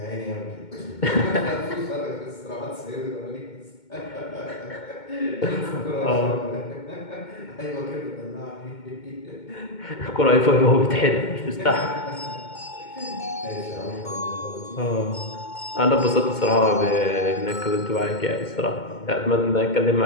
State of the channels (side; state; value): right; late; 2.2 ms